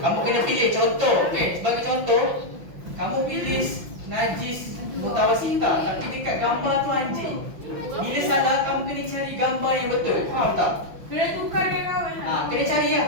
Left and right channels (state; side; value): late; left; 5.9 ms